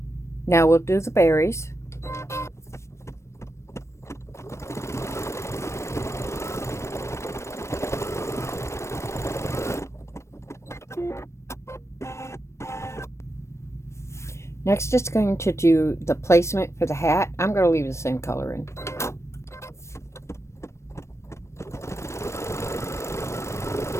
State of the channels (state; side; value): late; right; 0.13 ms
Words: Now we'll do the berries. Next it's going to do the placement for the hat. I'm going to leave the same color in.